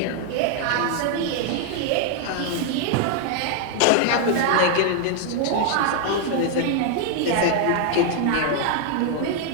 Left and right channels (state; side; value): different; both; correlation 0.00